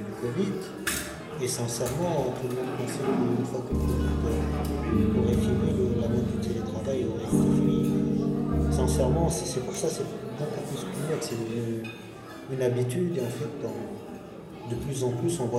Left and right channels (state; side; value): identical; both; correlation 1.00